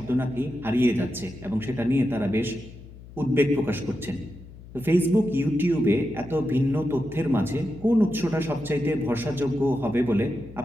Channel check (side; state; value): left; noise; hum, 18 dB below the sound